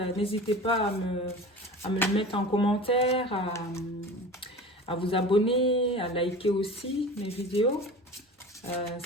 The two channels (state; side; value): normal; both; correlation 0.36